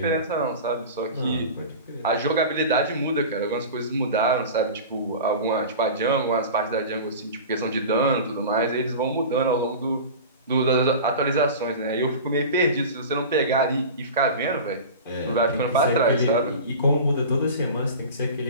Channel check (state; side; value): inverted; both; correlation -0.33